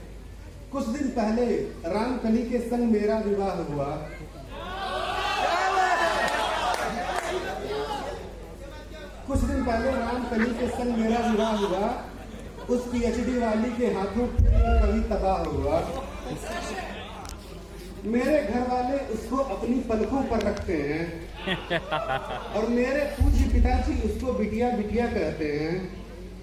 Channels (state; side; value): identical; both; correlation 1.00